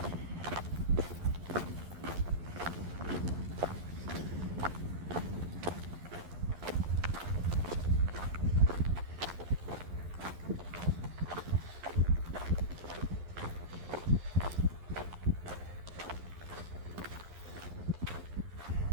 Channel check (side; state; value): left; late; 11 ms